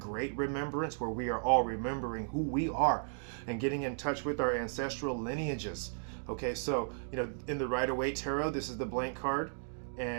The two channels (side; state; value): left; silent; digital silence